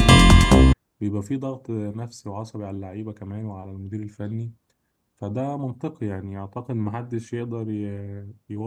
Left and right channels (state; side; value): identical; both; correlation 1.00